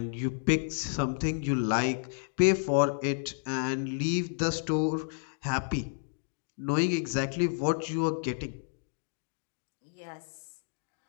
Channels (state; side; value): silent; right; digital silence